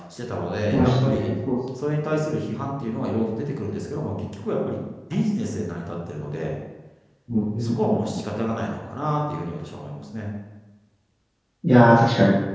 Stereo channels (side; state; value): both; identical; correlation 1.00